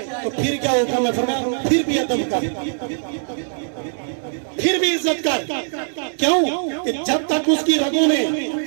تو پھر کیا ہوگا؟ میں فرمایا پھر بھی ادب کر، پھر بھی عزت کر۔ کیوں کہ جب تک اس کی رگوں میں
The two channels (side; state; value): left; silent; digital silence